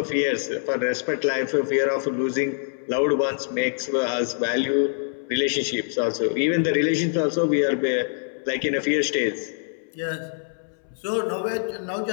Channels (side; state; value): right; silent; 62 dB below the other